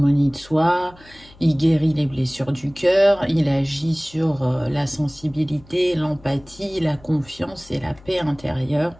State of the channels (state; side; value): noise; left; hum, 24 dB below the sound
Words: de soi, il guérit les blessures du cœur, il agit sur la sensibilité, l'empathie, la confiance et la paix intérieure.